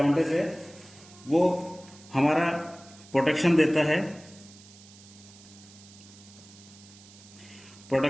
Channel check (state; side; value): noise; right; hiss, 22 dB below the sound